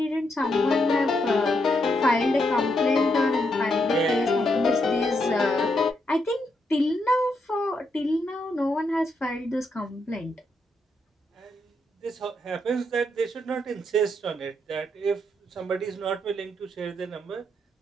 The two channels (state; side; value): normal; both; correlation 0.79